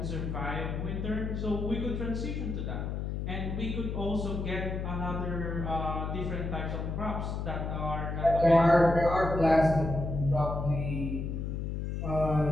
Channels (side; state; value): left; noise; hum, 3 dB below the sound